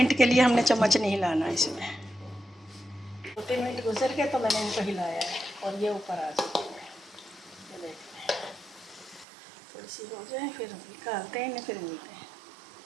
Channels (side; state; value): left; drops out; at 9.2 s